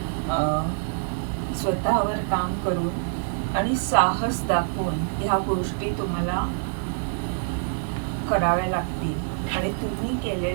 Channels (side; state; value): left; silent; digital silence